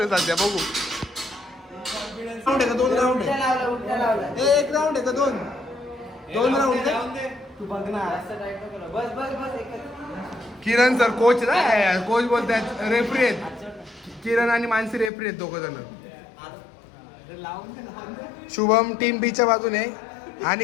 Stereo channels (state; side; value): drops out; right; at 15.1 s